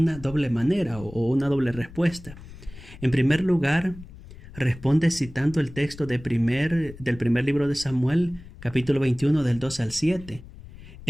doble manera o una doble respuesta. En primer lugar, responde citando el texto del primer libro de Samuel, capítulo 21, del 2 al 7,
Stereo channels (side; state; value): left; noise; rumble, 17 dB below the sound